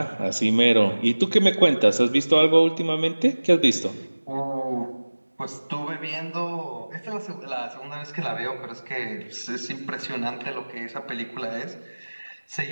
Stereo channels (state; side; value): inverted; both; correlation -1.00